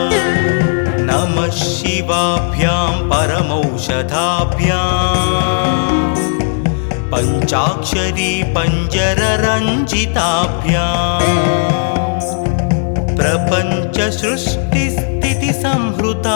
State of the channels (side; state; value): right; silent; digital silence